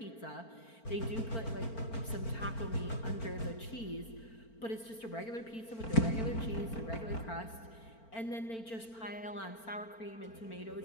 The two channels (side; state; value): right; late; 4.4 ms